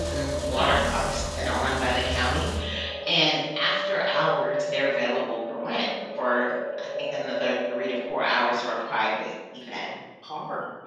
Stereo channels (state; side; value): identical; both; correlation 1.00